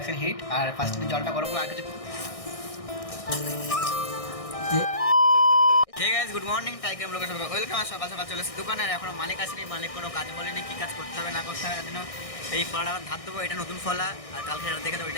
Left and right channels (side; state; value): right; late; 1.6 ms